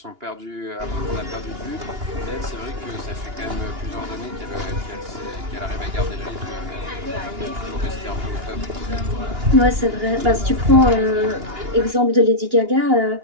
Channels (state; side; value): late; left; 2.9 ms